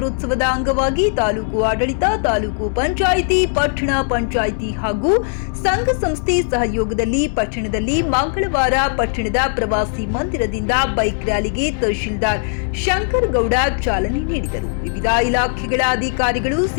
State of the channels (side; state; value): right; silent; 63 dB below the other